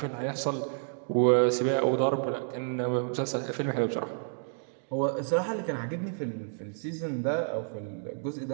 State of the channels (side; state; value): left; silent; digital silence